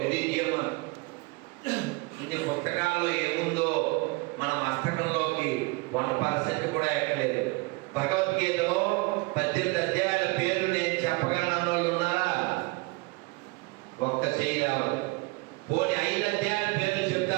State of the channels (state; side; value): quieter; left; 25.8 dB